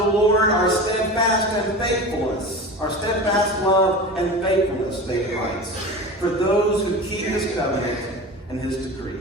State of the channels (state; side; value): normal; both; correlation 0.31